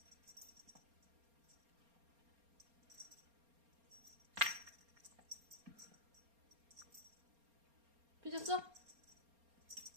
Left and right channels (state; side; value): late; left; 4.3 ms